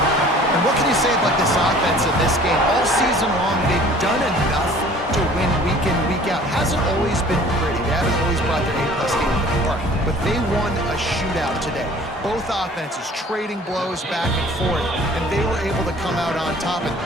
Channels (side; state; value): both; normal; correlation 0.50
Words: And what can you say about this offense in this game? All season long, they've done enough to win week in, week out. Hasn't always been pretty. They haven't always brought their A-plus game to the park. But they won a shootout today. Both offenses trading blows back and forth, and they were able to come out on top.